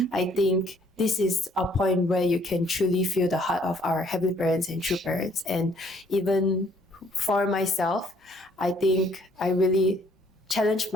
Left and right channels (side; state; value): both; normal; correlation 0.63